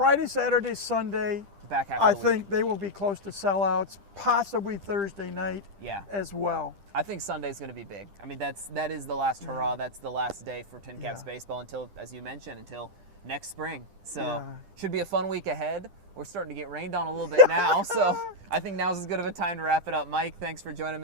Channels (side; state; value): left; late; 10 ms